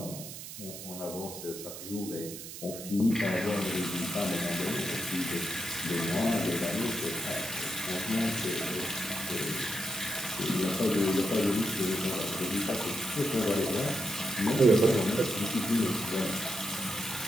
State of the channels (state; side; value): noise; right; hiss, 11 dB below the sound